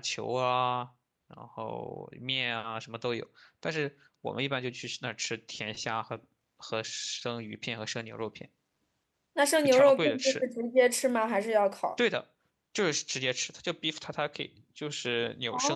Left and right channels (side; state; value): both; identical; correlation 1.00